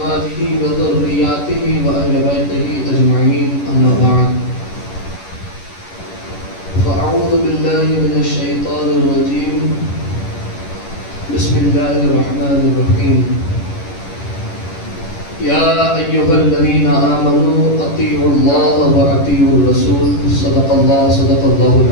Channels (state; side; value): late; right; 11 ms